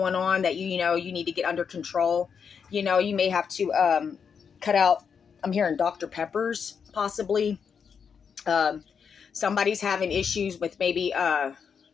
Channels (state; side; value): quieter; right; 6.6 dB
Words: on that you need to get under control. You may have to cut out, I'm hearing Dr. Peppers possibly. Somebody's having issues with maybe